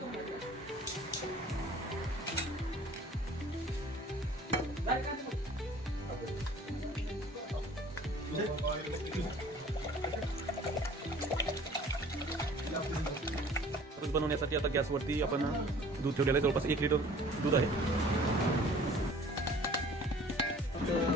खरूज बनवण्यासाठी आता गॅसवरती आपण दूध ठेवलेलं आहे. जवळपास 1 लिटर दूध आहे.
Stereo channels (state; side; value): normal; both; correlation 0.49